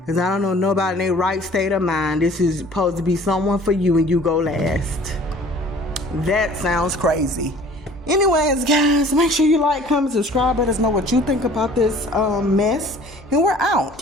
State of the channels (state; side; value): normal; both; correlation 0.50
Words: I don't know nobody in their right state of mind. This is supposed to be someone for you and you go last. That sounds crazy. Anyways, guys, make sure you like, comment, subscribe. Let us know what you think about this mess. And we're